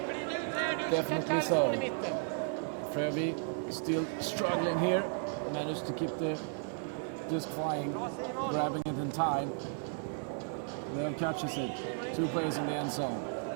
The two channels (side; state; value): left; silent; 55 dB below the other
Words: Definitely so. Frövik still struggling here. Managed to keep the disc flying, grabbing it in time. Lev catches it. 2 players in the end zone.